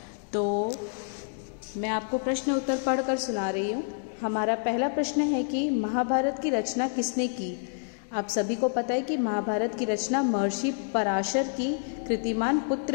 तो मैं आपको प्रश्न उत्तर पढ़कर सुना रही हूँ। हमारा पहला प्रश्न है कि महाभारत की रचना किसने की। आप सभी को पता है कि महाभारत की रचना महर्षि पराशर की कृतिमान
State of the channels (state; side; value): silent; right; digital silence